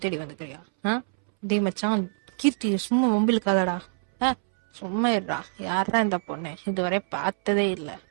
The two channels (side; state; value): left; silent; 61 dB below the other